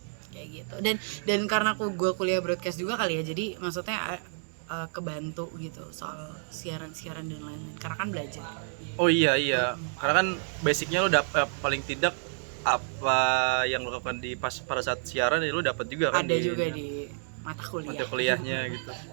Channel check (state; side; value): silent; left; digital silence